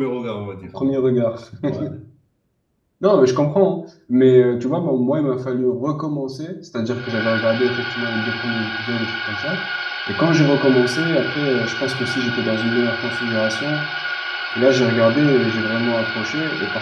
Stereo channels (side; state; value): both; identical; correlation 1.00